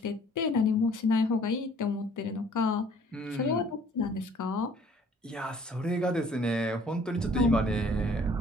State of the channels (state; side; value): normal; both; correlation 0.56